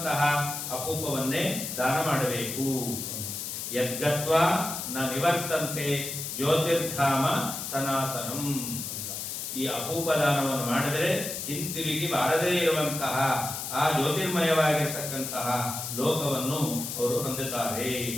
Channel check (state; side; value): noise; left; hiss, 5 dB below the sound